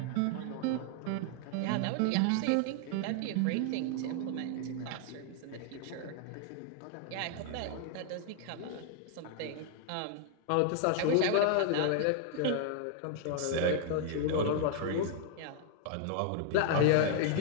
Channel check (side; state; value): both; different; correlation 0.00